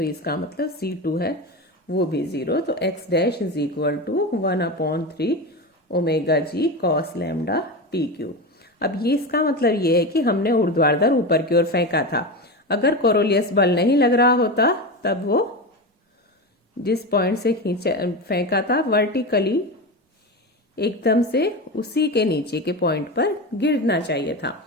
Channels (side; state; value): both; normal; correlation 0.21